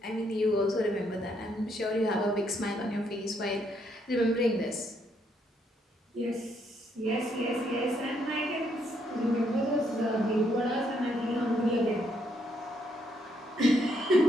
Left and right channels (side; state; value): both; normal; correlation 0.73